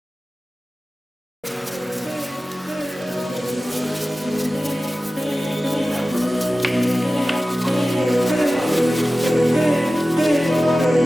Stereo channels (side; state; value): both; normal; correlation 0.96